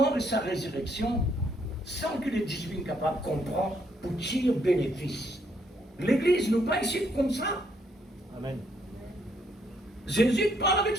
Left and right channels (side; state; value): both; normal; correlation 0.71